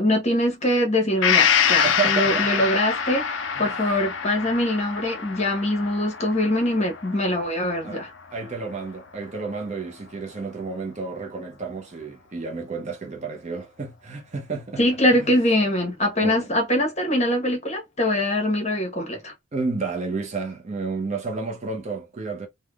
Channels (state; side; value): normal; both; correlation 0.30